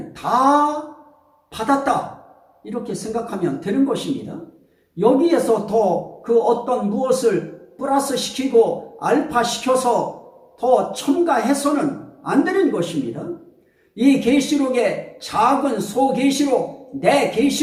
다 받았다 이렇게 생각하면 되는 것입니다. 여기에서 더 그 어떤 무엇을 플러스 시키고 알파 시켜서 더 첨가해서는 안 되는 것입니다. 이 계시록에 작은 소계시록 내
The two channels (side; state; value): both; identical; correlation 1.00